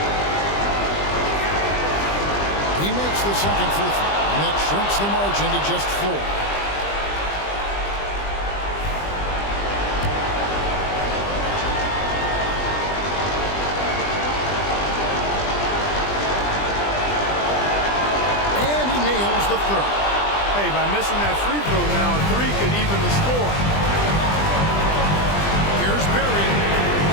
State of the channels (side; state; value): right; late; 20 ms